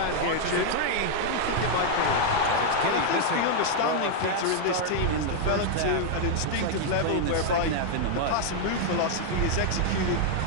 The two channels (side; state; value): both; different; correlation 0.00